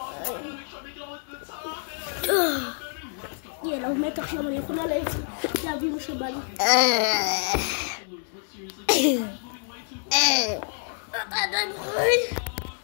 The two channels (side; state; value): right; silent; 59 dB below the other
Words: יאללה, הוא מת עכשיו, אני יכולה להביא מה שבא לי. אתה עדיין חי?